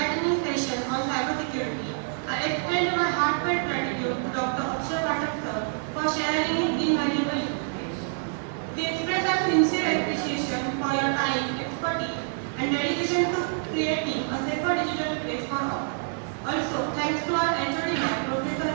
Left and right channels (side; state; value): left; silent; digital silence